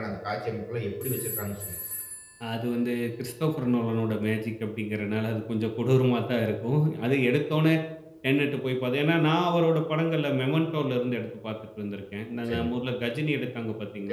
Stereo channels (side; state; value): both; identical; correlation 1.00